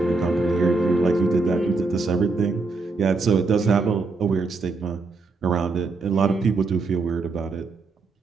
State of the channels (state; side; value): quieter; left; 3.9 dB